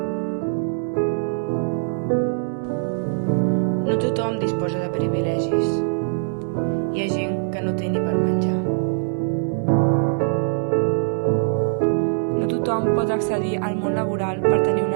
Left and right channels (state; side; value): silent; left; digital silence